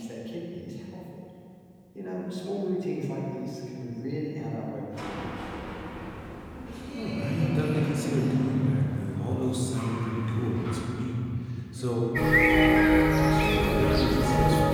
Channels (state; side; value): identical; both; correlation 1.00